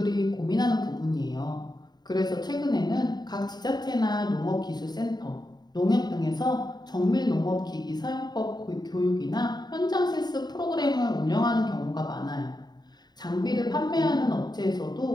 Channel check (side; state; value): right; late; 0.20 ms